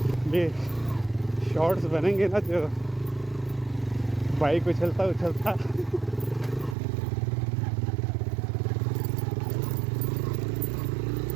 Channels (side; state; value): left; drops out; at 6.8 s